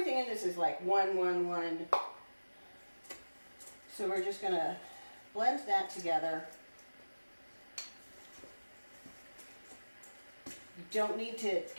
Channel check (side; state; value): both; inverted; correlation -1.00